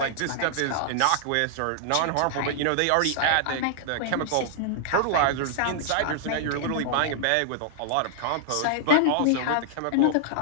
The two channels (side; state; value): both; different; correlation -0.01